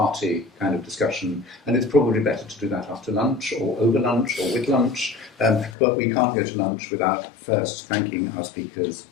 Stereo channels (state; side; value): drops out; right; at 5.8 s